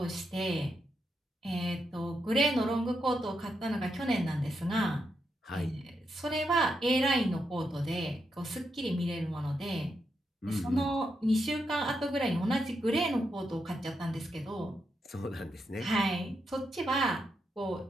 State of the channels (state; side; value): normal; both; correlation 0.83